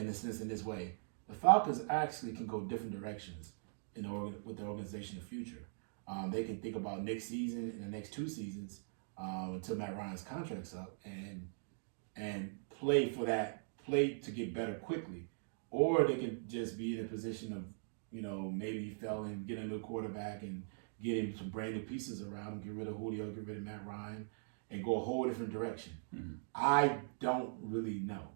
this way. The Falcons actually can go different directions with the organization in the future. They can think about next season and the next 2 seasons until Matt Ryan's contract's up and play to get better quickly. Or they can just be in a position of maybe fell and get a new quarterback and get him some brand new pieces around him, get rid of Julio, get rid of Matt Ryan, and go a whole different direction. Mm-hmm. I don't really know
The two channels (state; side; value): silent; left; digital silence